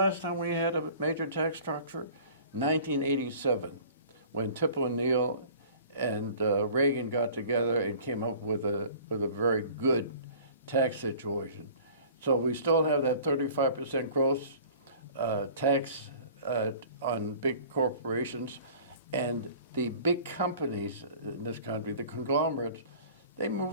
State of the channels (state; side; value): inverted; both; correlation -0.46